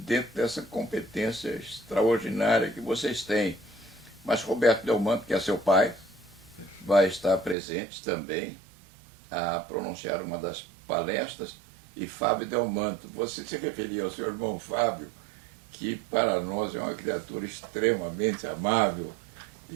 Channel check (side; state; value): left; drops out; at 7.6 s